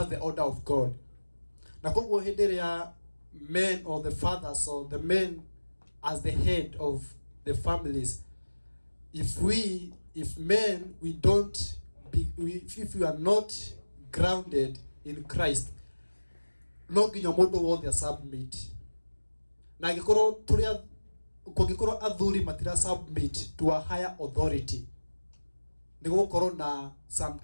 order of God. Na koguo hĩndĩ ĩrĩa men or the fathers or the men as the head of the families, if we are not grounded in Christ, no nginya mũndũ wothe submit. Na kũngĩkorwo athuri matira submit to a higher authority, nĩ gũkorwo na some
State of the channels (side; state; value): both; inverted; correlation -1.00